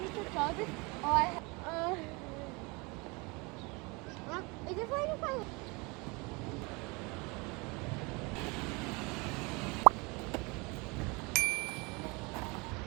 me to tell this? Oh, is it fine? Fine.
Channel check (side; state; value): left; quieter; 27.5 dB